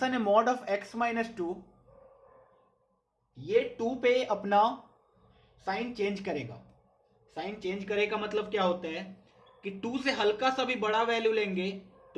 है mod of x minus 2 ये 2 पे अपना साइन चेंज करेगा। साइन चेंज करेगा मतलब क्या होता है कि 2 से हल्का सा भी बड़ा वैल्यू लेंगे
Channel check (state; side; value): identical; both; correlation 1.00